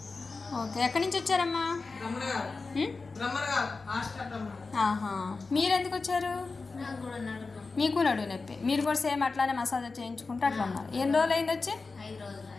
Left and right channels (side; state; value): right; quieter; 4.0 dB